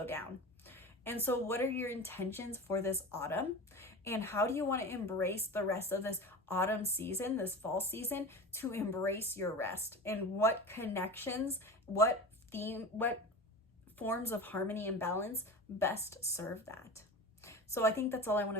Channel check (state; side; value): normal; both; correlation 0.31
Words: down. And so what are your intentions for this autumn? And how do you want to embrace the rest of this autumn season, this fall season, to embrace your rest? And what connections, what forms of harmony and balance best serve that? So I think that's all I want